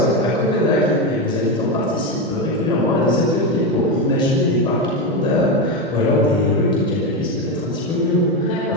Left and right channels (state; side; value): normal; both; correlation 0.13